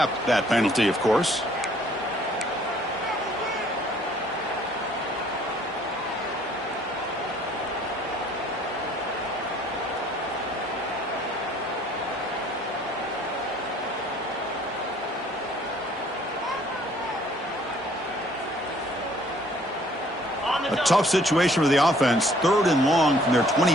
that penalty, of course. A tough situation for the offense. 3rd and long from their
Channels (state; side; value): normal; both; correlation 0.59